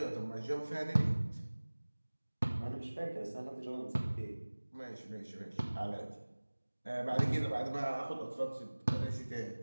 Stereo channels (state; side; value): inverted; both; correlation -1.00